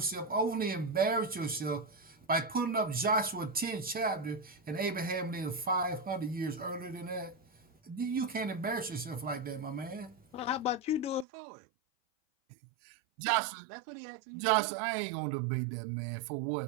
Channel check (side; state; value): left; drops out; at 11.2 s